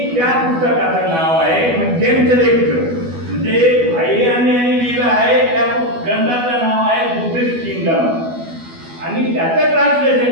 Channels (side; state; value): left; late; 12 ms